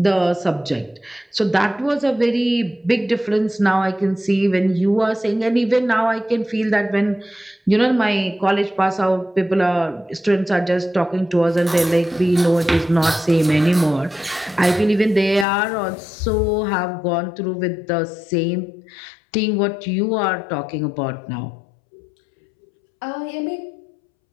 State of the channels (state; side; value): drops out; right; at 15.5 s